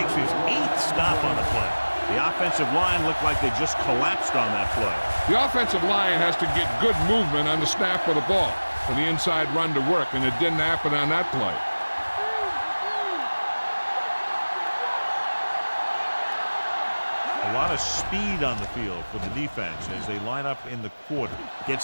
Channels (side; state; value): both; inverted; correlation -1.00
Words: his 8th stop on the play. The offensive line looked like they just collapsed on that play. The offensive line has to get good movement on the snap of the ball for the inside run to work, and it didn't happen on that play. A lot of speed on the field for the defense as they line up in the quarter.